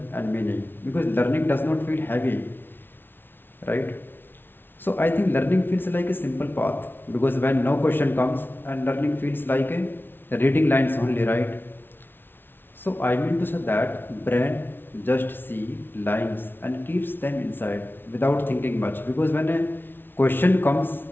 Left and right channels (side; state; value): right; late; 0.10 ms